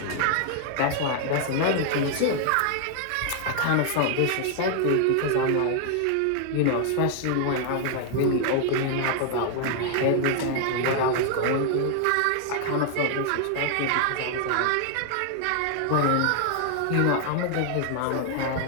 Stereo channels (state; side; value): different; both; correlation 0.00